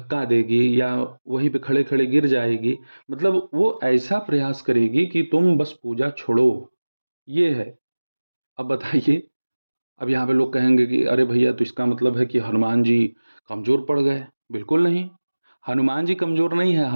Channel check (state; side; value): inverted; both; correlation -1.00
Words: देगी या वहीं पे खड़े-खड़े गिर जाएगी। मतलब वो ऐसा प्रयास करेगी कि तुम बस पूजा छोड़ो, ये है। अब बताइए, अब यहाँ पे लोग कहेंगे कि अरे भैया, तो इसका मतलब है कि हनुमान जी कमज़ोर पड़ गए। बिल्कुल नहीं, हनुमान जी कमज़ोर नहीं है,